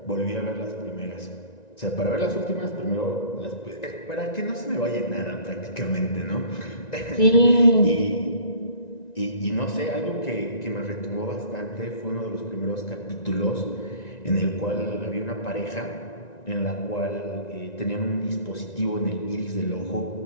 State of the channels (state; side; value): late; right; 1.9 ms